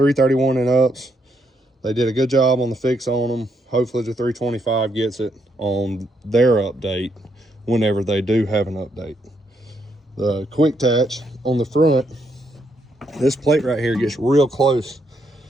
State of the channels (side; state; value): both; normal; correlation 0.76